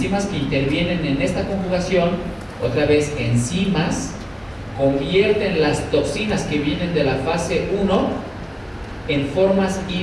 que intervienen en esta conjugación, otra vez enzimas, convierten las toxinas que vienen de la fase 1 en formas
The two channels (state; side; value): identical; both; correlation 1.00